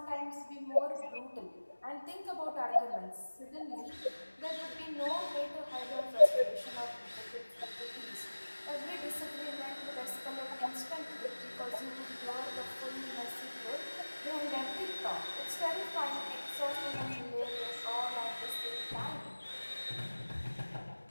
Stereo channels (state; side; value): inverted; both; correlation -1.00